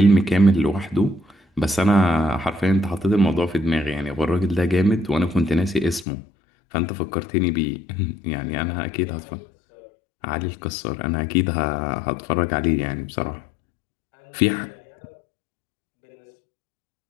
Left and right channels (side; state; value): right; drops out; at 6.1 s